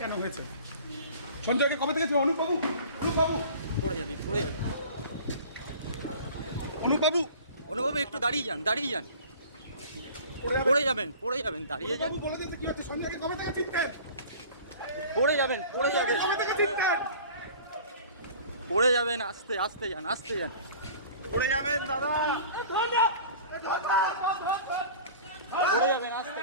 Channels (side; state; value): both; inverted; correlation -0.43